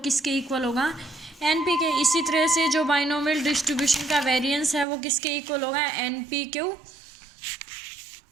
इक्वल होगा, NP के। इसी तरह से जो बाइनोमियल डिस्ट्रीब्यूशन का वेरिएंस है वो किसके इक्वल होगा, NPQ।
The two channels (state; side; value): drops out; left; at 4.9 s